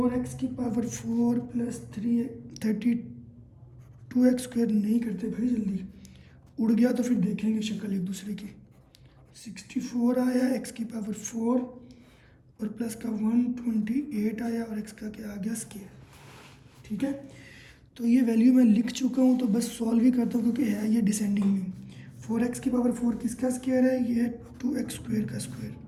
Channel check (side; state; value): both; identical; correlation 1.00